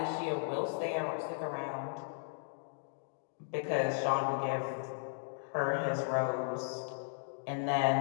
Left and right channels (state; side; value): silent; right; digital silence